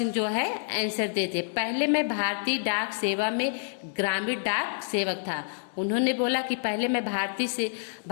जो है आंसर देते, पहले मैं भारतीय डाक सेवा में ग्रामीण डाक सेवक था। उन्होंने बोला कि पहले मैं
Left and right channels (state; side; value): silent; right; digital silence